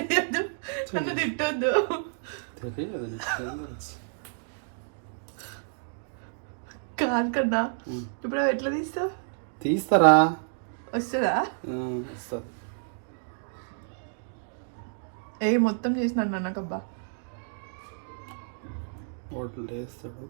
నన్ను తిట్టొద్దు. కాదు కన్నా, ఇప్పుడు అవి ఎట్లా తీస్తావు? తీస్తారా? వస్తుందా? వస్తుంది. మొత్తం చేసినాడు నాన్నకబ్బా. హోటల్ వేస్తాడు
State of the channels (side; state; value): left; silent; digital silence